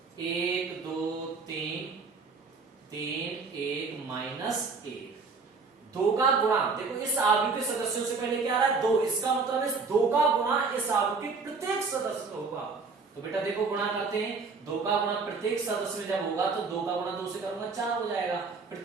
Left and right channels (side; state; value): left; quieter; 4.5 dB